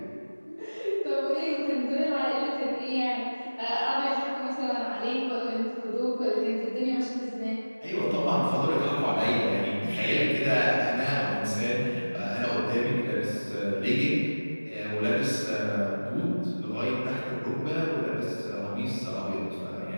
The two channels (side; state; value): both; inverted; correlation -1.00